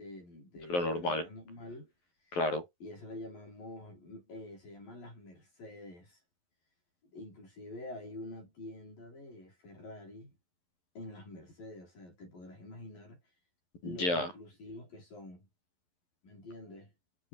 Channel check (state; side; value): late; right; 11 ms